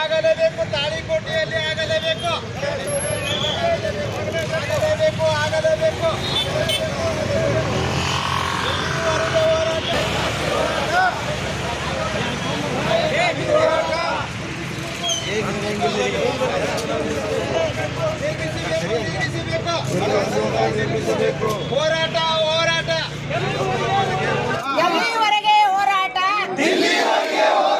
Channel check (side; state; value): both; identical; correlation 1.00